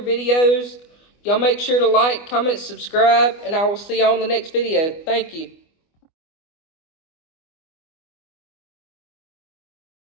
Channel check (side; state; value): right; late; 25 ms